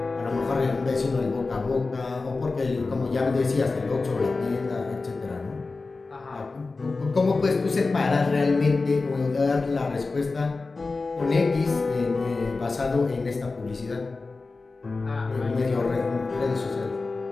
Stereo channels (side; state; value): right; quieter; 3.8 dB